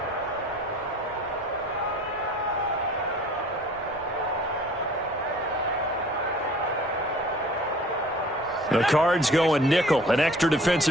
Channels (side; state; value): both; normal; correlation 0.49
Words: The Cards going nickel. An extra